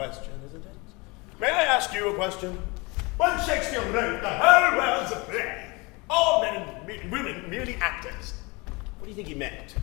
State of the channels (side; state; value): right; quieter; 26.5 dB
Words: isn't it? May I ask ask you a question? When Shakespeare wrote the whole world's a play, all men and women merely actors, what do you think he meant?